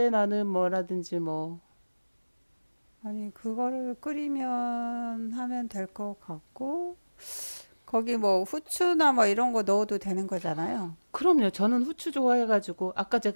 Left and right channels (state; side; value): inverted; both; correlation -1.00